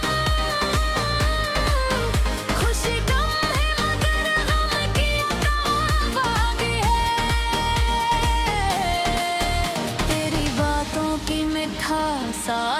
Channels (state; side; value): identical; both; correlation 1.00